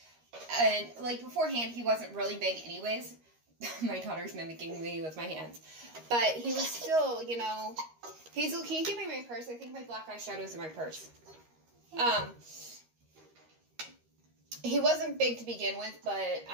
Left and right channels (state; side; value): late; left; 13 ms